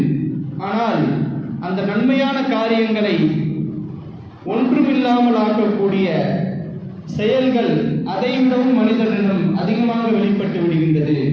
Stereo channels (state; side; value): identical; both; correlation 1.00